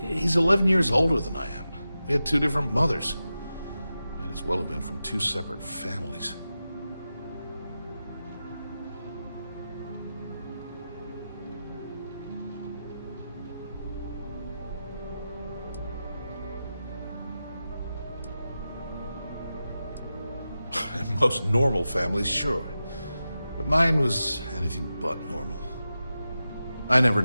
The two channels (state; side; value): inverted; both; correlation -0.92